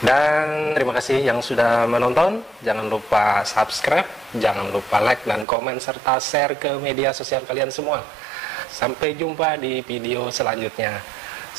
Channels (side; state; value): left; drops out; at 5.5 s